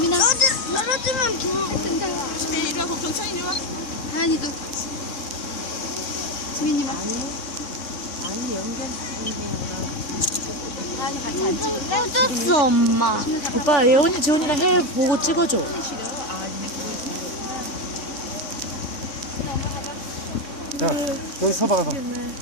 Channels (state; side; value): late; right; 3.6 ms